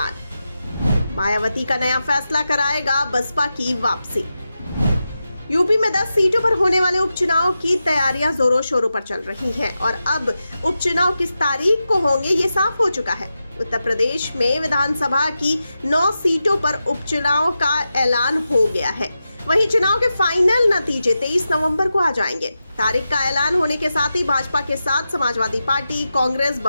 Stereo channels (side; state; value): both; inverted; correlation -0.90